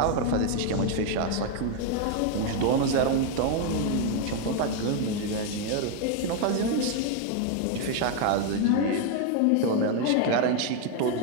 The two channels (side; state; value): both; different; correlation 0.01